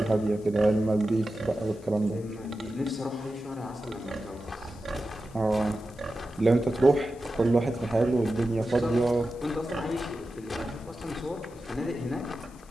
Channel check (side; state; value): left; noise; hiss, 26 dB below the sound